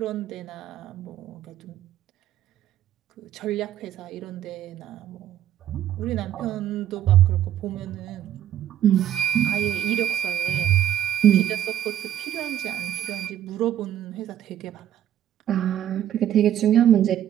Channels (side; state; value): left; quieter; 11.1 dB